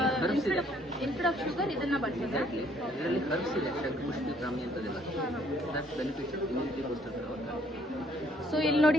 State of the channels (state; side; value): normal; both; correlation 0.64